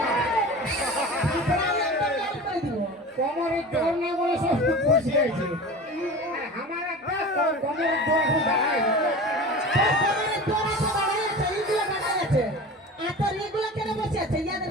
প্রায় একটা গাল করে দিব। কোমরের জোর নেই বলে সব বসে আছে। আমার একটা কোমরের জোর এখন দাঁড়ায়। কমরের জোর আছে, দাঁড়ায় আছে, এইগুলো দাঁড়ায় আছে। আর তোর এগুলো কেন বসে আছে?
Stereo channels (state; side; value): normal; both; correlation 0.34